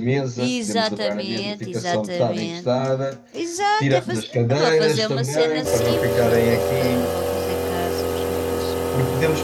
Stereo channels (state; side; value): identical; both; correlation 1.00